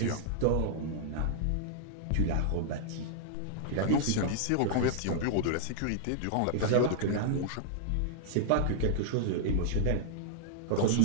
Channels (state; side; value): different; both; correlation -0.01